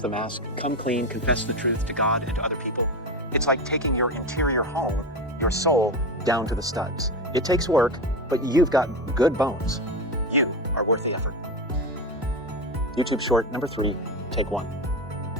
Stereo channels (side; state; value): both; normal; correlation 0.19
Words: the mask, come clean, confess the truth to God and to other people, it's like taking your interior home, your soul, down to the studs. It takes work, but you've got good bones. You are worth the effort. YouTube short number 3, take 1.